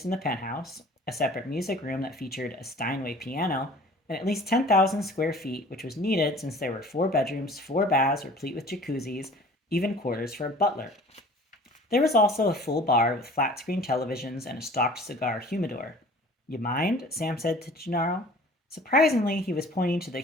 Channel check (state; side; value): normal; both; correlation 0.47